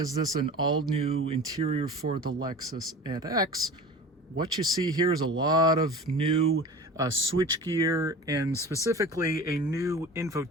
this an all-new interior for the Lexus NX, what you see here is a lot of new switchgear and specifically a new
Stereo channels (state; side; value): normal; both; correlation 0.37